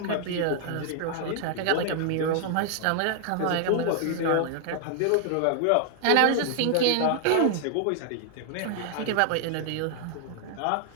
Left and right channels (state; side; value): different; both; correlation 0.00